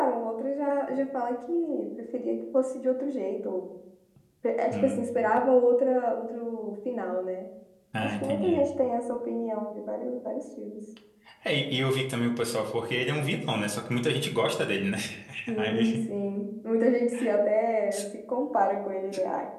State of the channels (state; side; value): identical; both; correlation 1.00